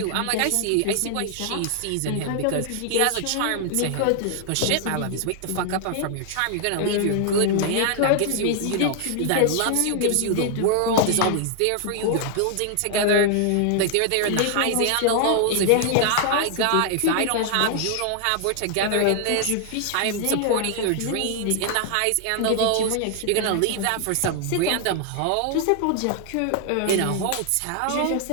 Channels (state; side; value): different; both; correlation 0.00